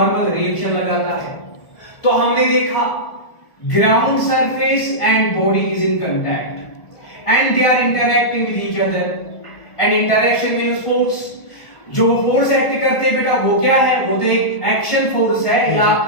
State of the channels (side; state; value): right; late; 1.3 ms